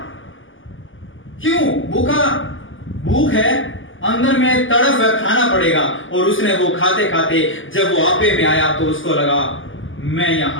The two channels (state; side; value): late; right; 0.58 ms